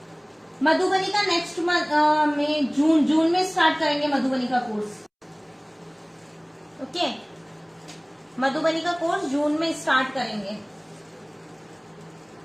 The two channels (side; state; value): both; identical; correlation 1.00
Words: मधुबनी का नेक्स्ट में जून में स्टार्ट करेंगे मधुबनी का कोर्स। ओके, मधुबनी का कोर्स जून में स्टार्ट करेंगे।